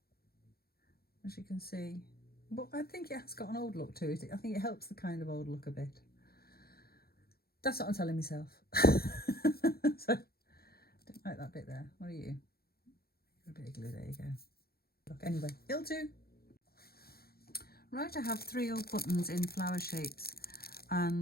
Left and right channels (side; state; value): right; late; 0.45 ms